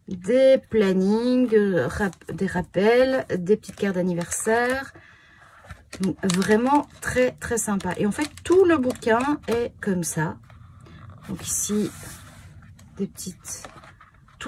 Des plannings, des rappels, des petites cartes d'anniversaire. Donc, vraiment très très sympa. Et en fait, tout le bouquin est comme ça. Donc ici, des petites...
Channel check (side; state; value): both; identical; correlation 1.00